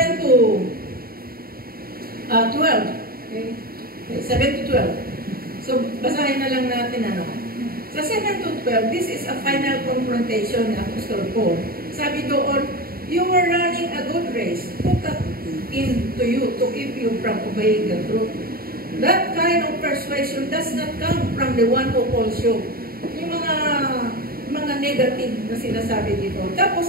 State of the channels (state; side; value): late; left; 0.43 ms